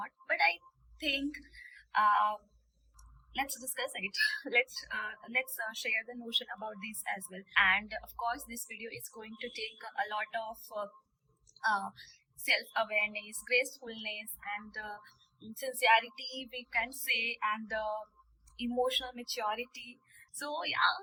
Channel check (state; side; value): identical; both; correlation 1.00